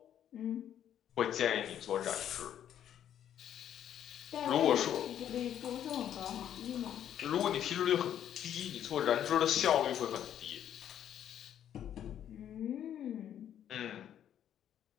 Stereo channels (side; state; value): right; quieter; 10.2 dB